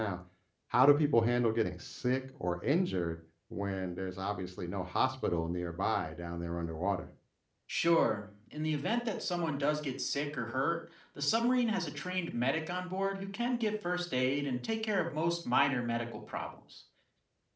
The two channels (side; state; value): both; identical; correlation 1.00